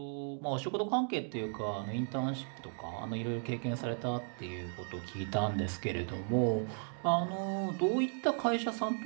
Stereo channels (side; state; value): left; silent; 54 dB below the other